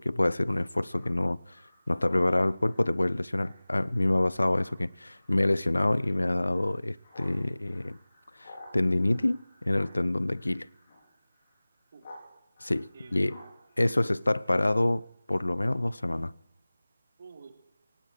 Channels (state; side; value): inverted; both; correlation -1.00